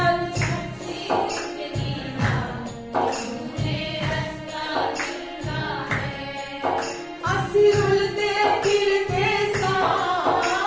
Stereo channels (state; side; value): identical; both; correlation 1.00